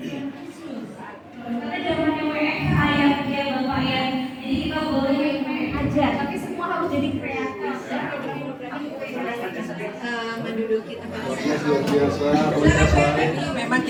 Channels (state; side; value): identical; both; correlation 1.00